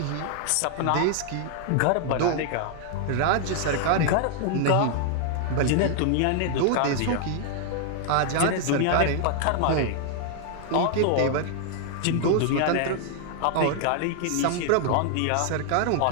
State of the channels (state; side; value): different; both; correlation 0.00